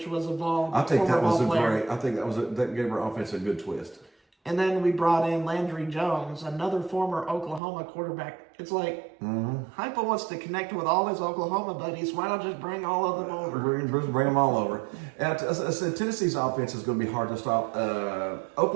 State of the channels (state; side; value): drops out; left; at 7.6 s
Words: was a I think former that was ball a player. great. I think that gave our offense a good twist. And then we brought in Landry Jones, another former Oklahoma quarterback. It's like Hypo wants to connect with all his Oklahoma buddies. Why not just bring all of them over? Bring them all over. And I said Tennessee's offense is going to be hard to stop.